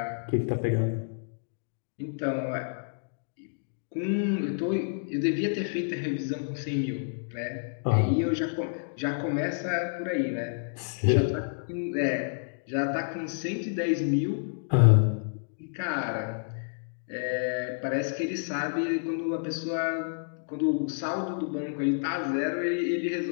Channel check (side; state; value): right; silent; digital silence